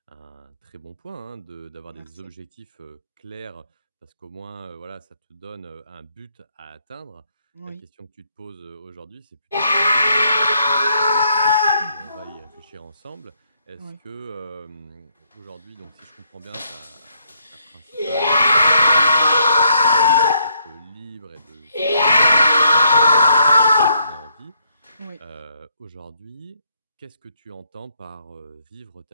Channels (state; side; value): inverted; both; correlation -0.73